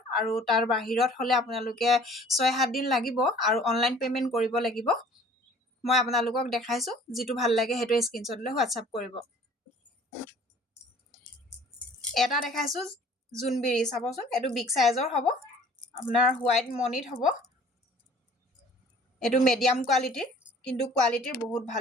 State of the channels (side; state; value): both; normal; correlation 0.51